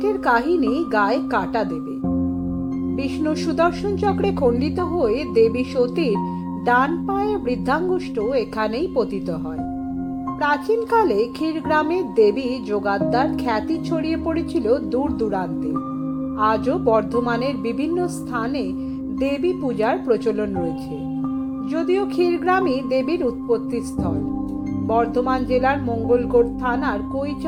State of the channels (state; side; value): identical; both; correlation 1.00